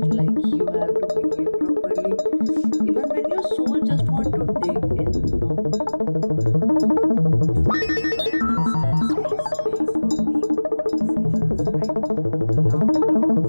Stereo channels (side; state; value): both; inverted; correlation -1.00